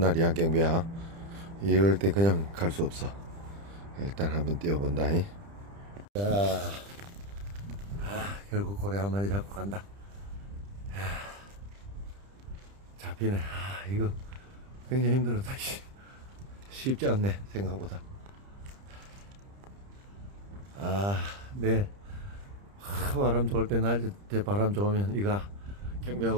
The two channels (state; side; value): late; left; 30 ms